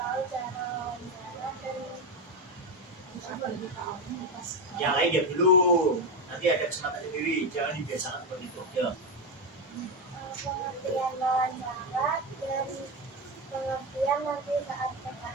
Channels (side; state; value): both; normal; correlation 0.13